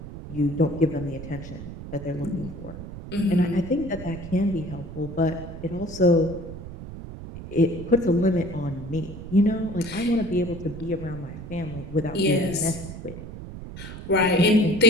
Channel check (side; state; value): right; noise; rumble, 11 dB below the sound